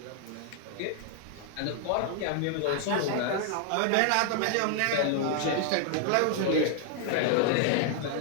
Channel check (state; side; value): different; both; correlation 0.00